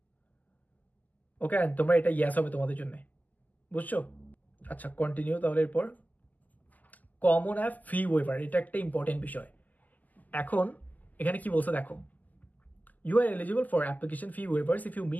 ওকে, তোমরা এটা ইয়েস হবে তোমাদের জন্য, বুঝছো? আচ্ছা, কন্টিনিউ। তাহলে এরপর কমন অ্যাপ ফি ওয়েভার, এটা একটা ইম্পর্টেন্ট বিষয়। এখন এখানে কি বলছে দেখো, you are eligible for application fee waivers if you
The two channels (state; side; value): late; right; 0.081 ms